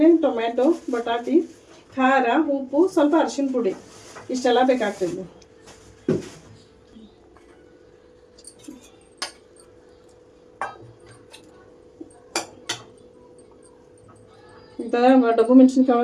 ಟೊಮ್ಯಾಟೊ, ಬಟಾಟಿ, ಖಾರ, ಉಪ್ಪು, ಸ್ವಲ್ಪ ಅರಿಶಿನ ಪುಡಿ, ಇಷ್ಟೆಲ್ಲ ಬೇಕಾಗ್ತದೆ. ಇಂಥ ಡಬ್ಬು ಮೆಣಸಿನ್ಕಾಯಿ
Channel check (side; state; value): both; identical; correlation 1.00